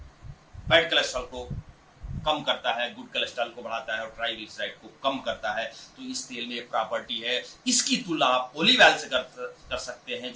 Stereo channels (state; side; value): identical; both; correlation 1.00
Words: बैड कोलेस्ट्रॉल को कम करता है, गुड कोलेस्ट्रॉल को बढ़ाता है और ट्राइग्लिसराइड को कम करता है। तो इस तेल में एक प्रॉपर्टी है। इसकी तुलना आप ओलिव ऑयल से कर सकते हैं